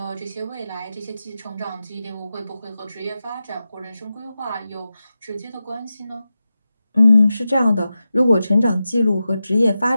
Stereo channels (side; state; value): both; inverted; correlation -0.92